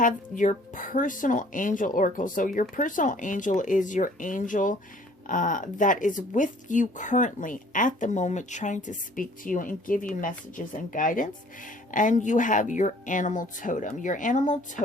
your personal angel oracle. So your personal angel is your angel that is with you currently at the moment, trying to speak to you and give you messages and guidance. And you have your animal totem. Your animal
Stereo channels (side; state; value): both; normal; correlation 0.55